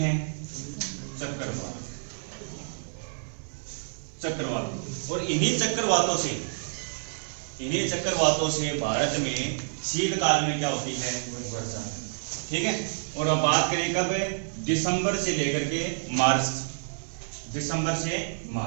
चक्रवात। चक्रवात। और इन्हीं चक्रवातों से भारत में शीतकाल में क्या होती है? वर्षा। ठीक है। और अब बात करें कब? दिसंबर से लेकर के मार्च। दिसंबर से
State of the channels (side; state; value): left; silent; digital silence